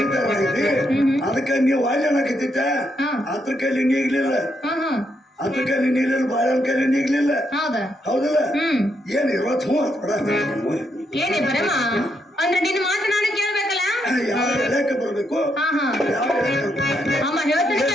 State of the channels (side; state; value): both; normal; correlation 0.78